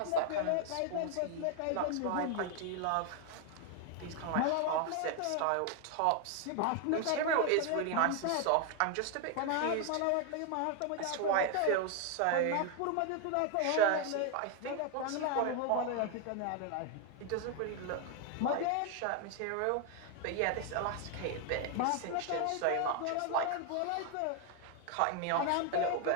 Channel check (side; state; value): both; different; correlation 0.00